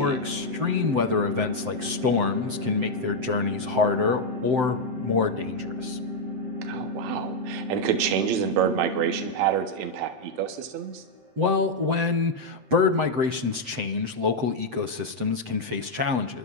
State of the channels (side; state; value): left; late; 7.8 ms